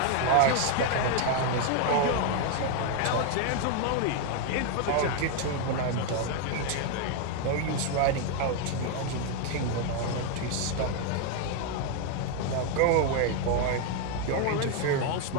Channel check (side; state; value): both; different; correlation 0.01